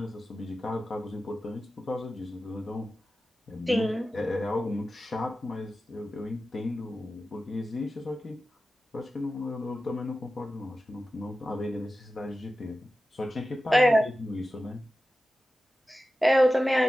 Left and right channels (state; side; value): normal; both; correlation 0.94